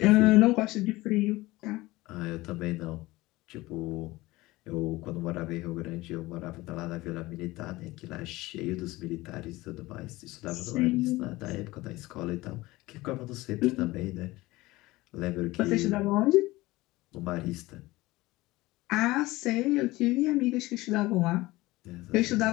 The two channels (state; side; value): quieter; right; 19.6 dB